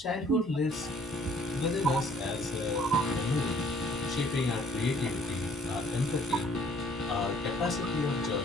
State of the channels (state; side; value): normal; both; correlation 0.59